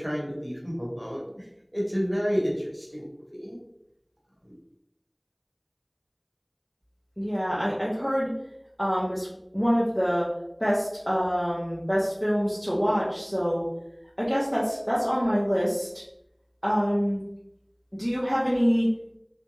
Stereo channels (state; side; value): identical; both; correlation 1.00